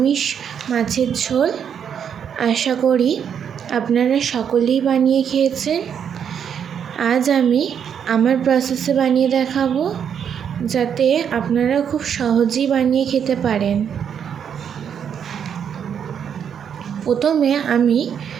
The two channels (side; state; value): left; quieter; 8.0 dB